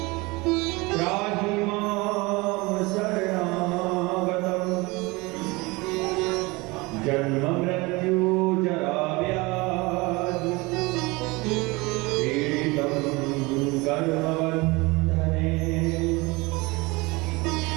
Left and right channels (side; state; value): left; quieter; 24.3 dB